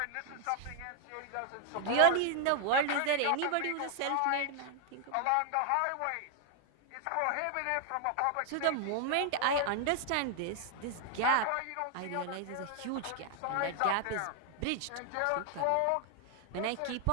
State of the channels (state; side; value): different; both; correlation 0.00